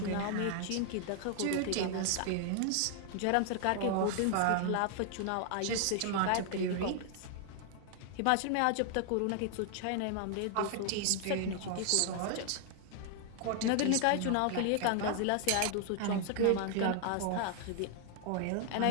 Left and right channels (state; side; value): different; both; correlation 0.00